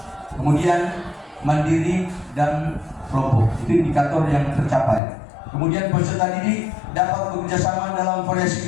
kemudian mandiri dan kelompok. Itu indikator yang tercapai. Kemudian peserta didik dapat bekerjasama dalam variasi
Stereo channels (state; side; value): drops out; right; at 5.0 s